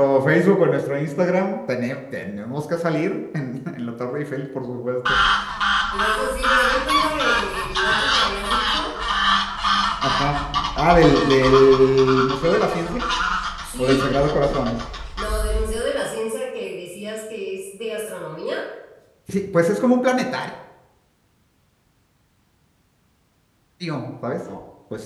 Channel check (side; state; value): both; identical; correlation 1.00